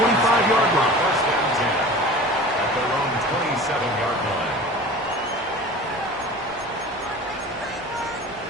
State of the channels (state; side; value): normal; both; correlation 0.38